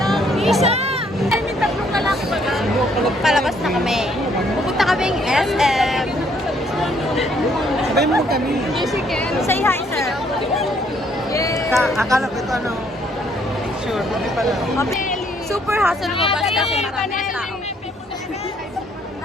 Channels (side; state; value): both; normal; correlation 0.66